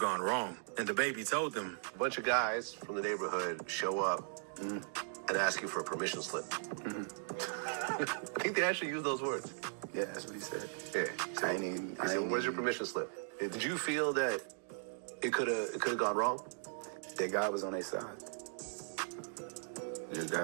wrong. And DaBaby told him, "A bunch of guys from the neighborhood show up and ask you for a permission slip." I think they actually used those words. Yeah, that's what he said. Yeah. I He said, "Where's your permission slip?" Did you feel that it could have gone wrong? That God was on their side. That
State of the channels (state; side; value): silent; left; digital silence